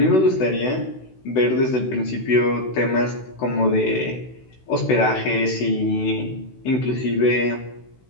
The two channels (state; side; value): late; right; 16 ms